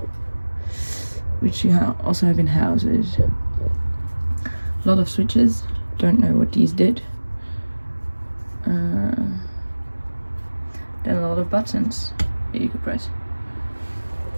which you also have in houses. A lot of switches. Don't know what these did. Then a lot of buttons that you could press.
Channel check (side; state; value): both; inverted; correlation -1.00